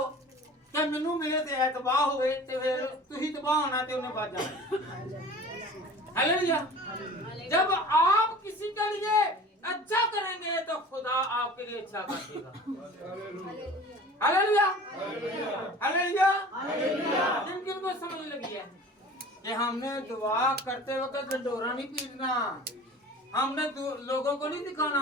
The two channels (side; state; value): both; normal; correlation 0.42